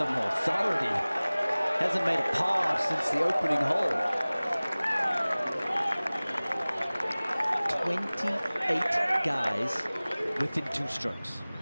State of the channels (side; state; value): both; inverted; correlation -0.99